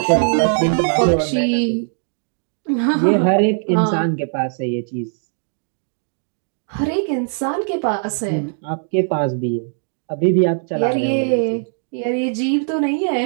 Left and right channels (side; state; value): left; silent; digital silence